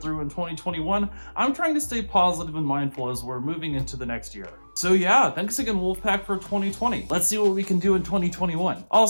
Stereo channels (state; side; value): inverted; both; correlation -1.00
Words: in 2021, I'm trying to stay positive and mindful as we're moving into the next year. So yeah, thanks again Wolfpack for 2020. Let's see what we can do in 2021.